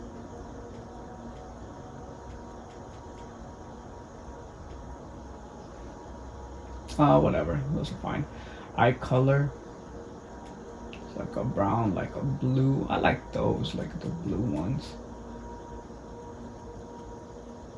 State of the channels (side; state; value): both; identical; correlation 1.00